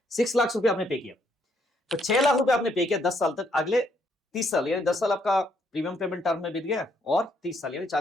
6 लाख रुपए आपने पे किया, तो 6 लाख रुपए आपने पे किया 10 साल तक। अगले 30 साल यानी 10 साल आपका प्रीमियम पेमेंट टर्म में बीत गया और 30 साल यानी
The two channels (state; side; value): normal; both; correlation 0.72